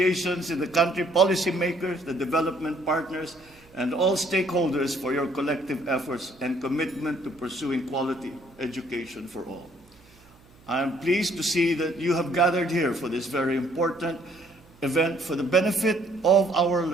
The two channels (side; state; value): right; noise; hum, 28 dB below the sound